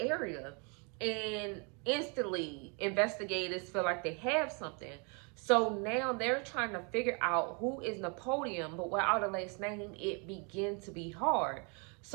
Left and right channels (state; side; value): quieter; left; 34.5 dB